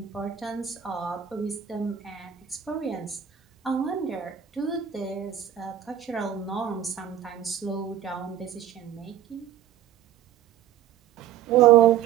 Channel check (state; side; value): quieter; left; 10.1 dB